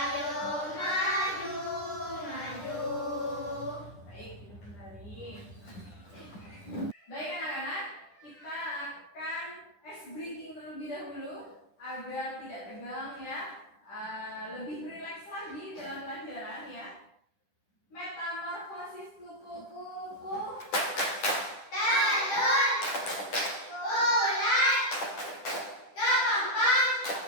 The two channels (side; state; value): right; late; 10 ms